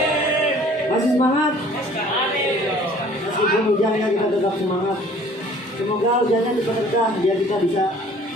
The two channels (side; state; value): both; normal; correlation 0.52